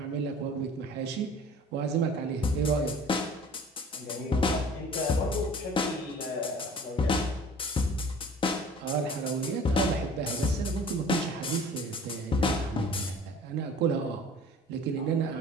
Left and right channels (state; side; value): normal; both; correlation 0.46